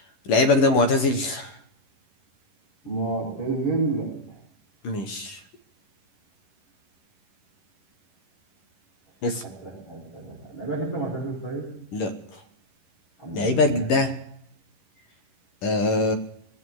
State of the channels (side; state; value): right; late; 11 ms